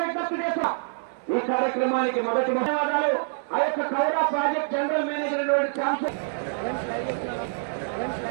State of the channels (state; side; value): silent; left; 61 dB below the other